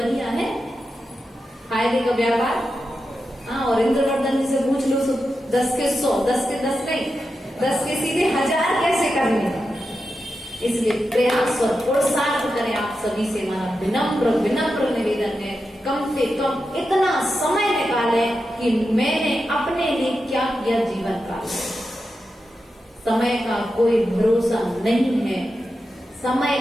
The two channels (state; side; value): normal; both; correlation 0.89